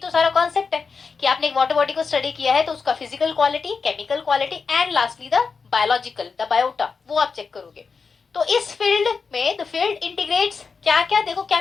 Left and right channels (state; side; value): quieter; right; 5.1 dB